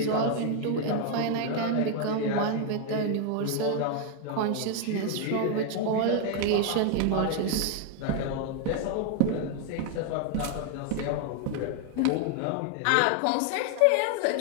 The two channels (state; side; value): different; both; correlation 0.00